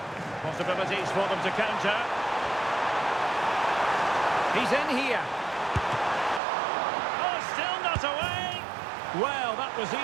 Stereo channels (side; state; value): left; drops out; at 6.4 s